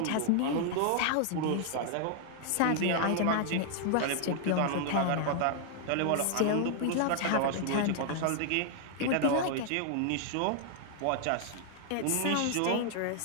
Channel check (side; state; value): both; different; correlation 0.00